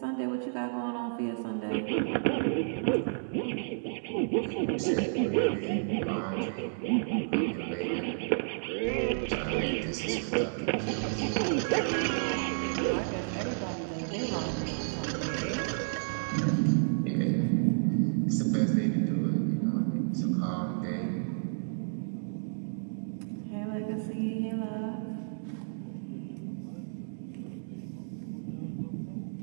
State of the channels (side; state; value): left; silent; digital silence